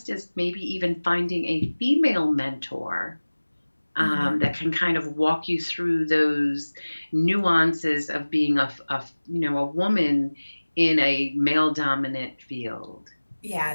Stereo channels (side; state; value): both; inverted; correlation -1.00